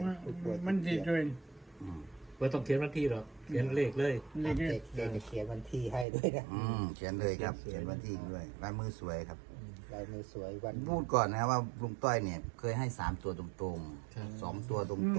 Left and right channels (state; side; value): drops out; left; at 6.1 s